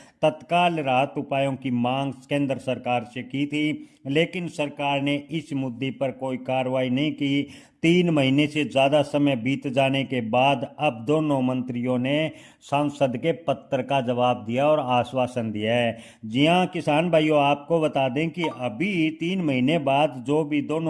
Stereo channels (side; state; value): both; identical; correlation 1.00